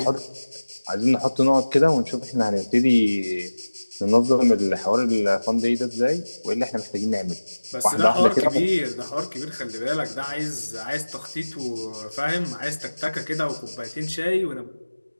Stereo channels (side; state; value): both; inverted; correlation -1.00